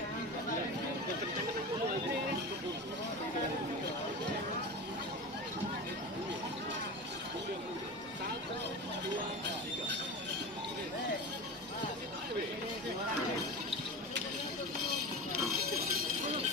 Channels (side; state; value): both; normal; correlation 0.27